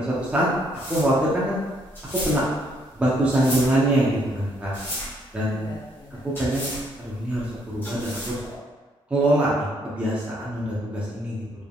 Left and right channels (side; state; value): both; normal; correlation 0.69